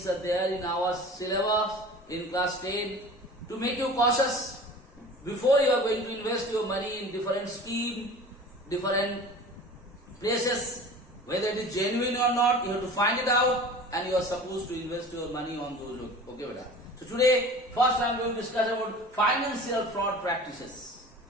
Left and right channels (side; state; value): both; normal; correlation 0.40